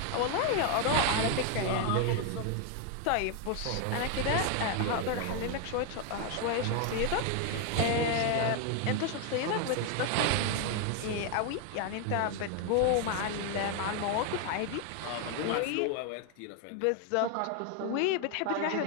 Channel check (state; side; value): different; both; correlation 0.01